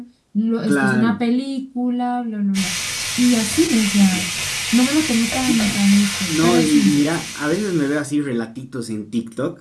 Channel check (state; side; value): identical; both; correlation 1.00